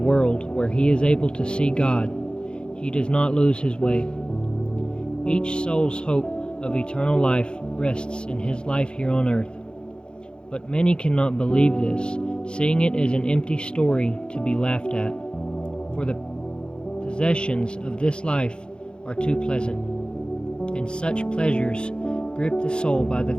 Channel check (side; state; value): right; late; 0.051 ms